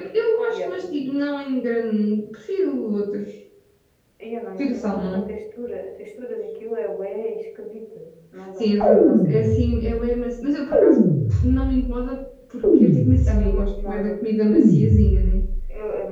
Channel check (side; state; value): both; identical; correlation 1.00